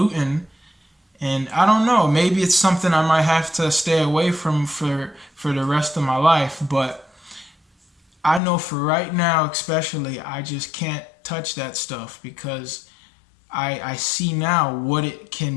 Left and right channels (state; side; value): drops out; right; at 8.4 s